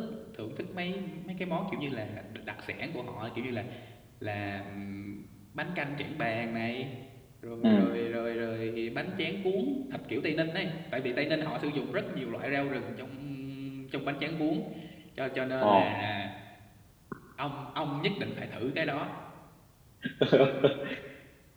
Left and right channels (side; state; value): both; identical; correlation 1.00